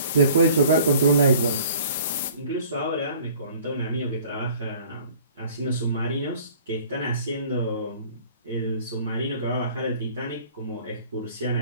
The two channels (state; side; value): inverted; both; correlation -0.51